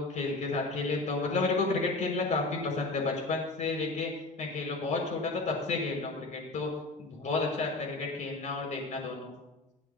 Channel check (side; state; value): right; quieter; 3.2 dB